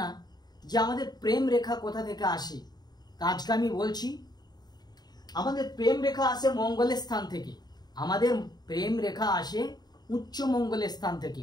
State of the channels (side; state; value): right; late; 0.20 ms